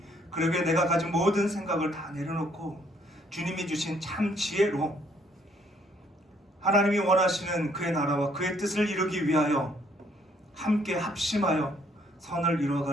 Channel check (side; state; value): both; normal; correlation 0.66